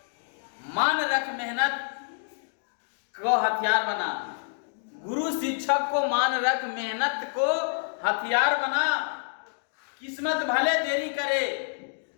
मान रख, मेहनत को हथियार बना। गुरु शिक्षक को मान रख, मेहनत को हथियार बना। किस्मत भले देरी करे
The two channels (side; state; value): right; silent; digital silence